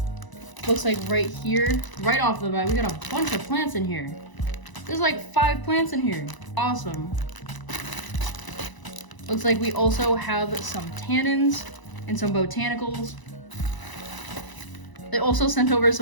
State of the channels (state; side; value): late; right; 1.0 ms